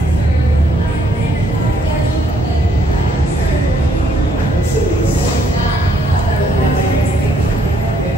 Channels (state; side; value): normal; both; correlation 0.68